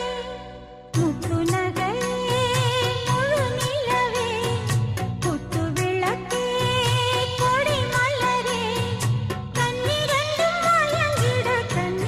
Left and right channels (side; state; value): both; identical; correlation 1.00